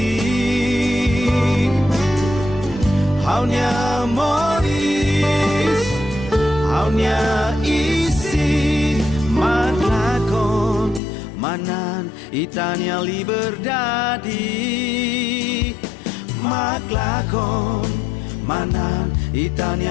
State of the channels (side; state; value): right; drops out; at 11.0 s